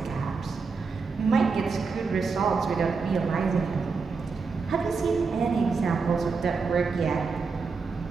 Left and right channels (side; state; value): left; quieter; 4.8 dB